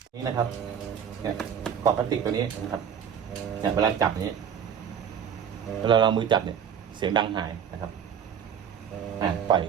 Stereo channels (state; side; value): quieter; left; 8.0 dB